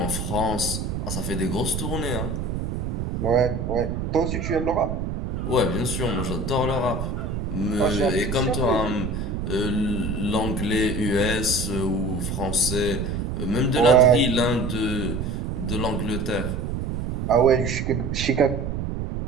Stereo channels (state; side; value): noise; right; rumble, 3 dB below the sound